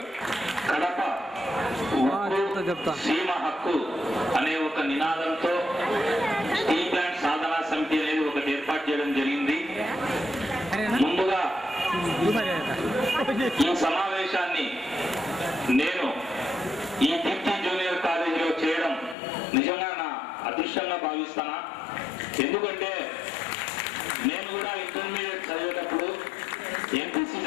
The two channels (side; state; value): right; drops out; at 19.2 s